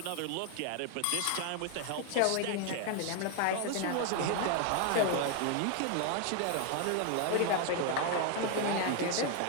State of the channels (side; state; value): both; different; correlation 0.00